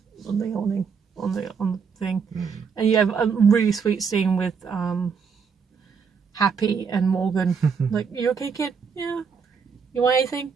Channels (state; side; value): quieter; left; 6.0 dB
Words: the awning, on the thing, and you have a really sweet scene with Happy and Morgan. Like, you okay, kid? Yeah. You want anything?